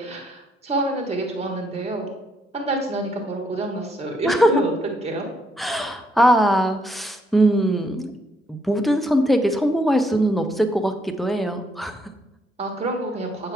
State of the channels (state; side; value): normal; both; correlation 0.73